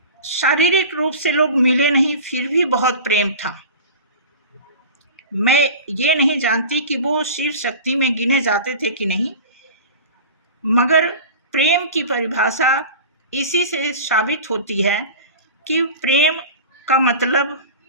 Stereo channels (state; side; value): inverted; both; correlation -0.34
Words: शारीरिक रूप से लोग मिले नहीं, फिर भी बहुत प्रेम था। मैं ये नहीं जानती कि वो शिव शक्ति में गिने जाते थे कि नहीं, मगर प्रेम की परिभाषा इसी से साबित होती है कि प्रेम का मतलब